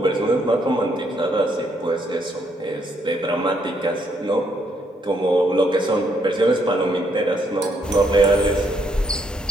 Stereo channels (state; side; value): normal; both; correlation 0.73